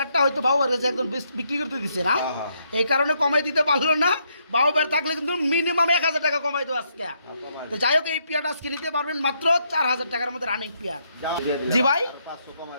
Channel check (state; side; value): inverted; both; correlation -0.76